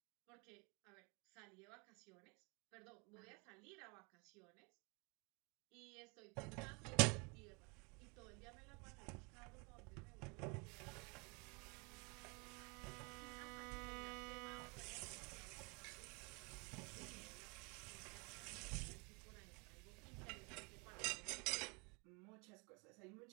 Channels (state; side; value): quieter; left; 30.7 dB